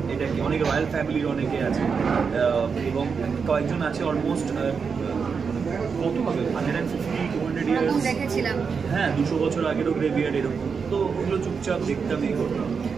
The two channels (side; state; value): left; quieter; 5.7 dB